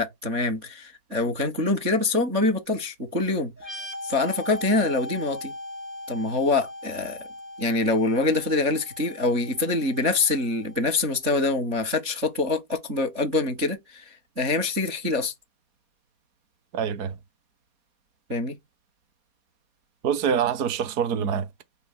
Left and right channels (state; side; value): late; left; 4.2 ms